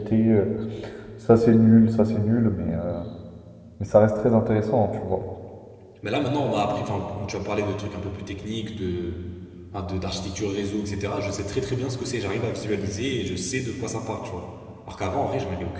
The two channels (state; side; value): identical; both; correlation 1.00